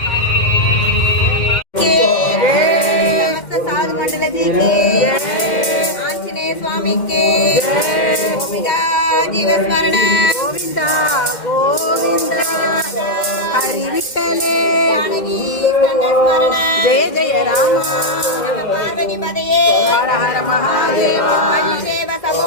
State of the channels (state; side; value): late; right; 2.1 ms